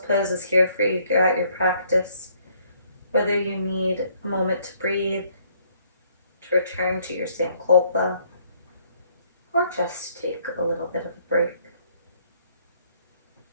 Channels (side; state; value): both; inverted; correlation -0.66